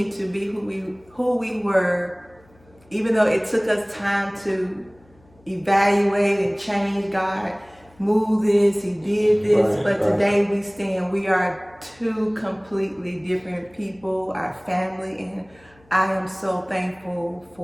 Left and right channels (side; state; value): left; noise; hum, 30 dB below the sound